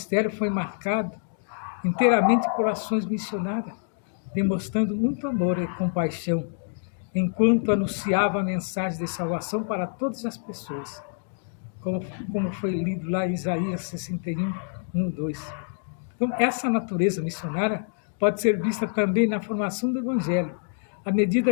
foi marcado inteiramente por ações missionárias, demonstrando muito amor e compaixão, enquanto anunciava a mensagem de salvação para todas as pessoas, como foi lido lá em Isaías 61, 1, 2. Então, essa natureza missionária pode ser vista também na formação do Evangelho, à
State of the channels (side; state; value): right; silent; digital silence